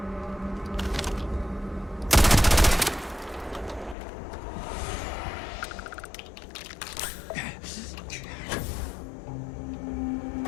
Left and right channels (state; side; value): drops out; right; at 4.0 s